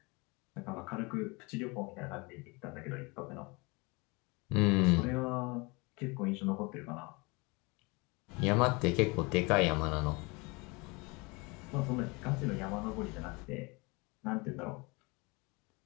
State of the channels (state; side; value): quieter; right; 27.3 dB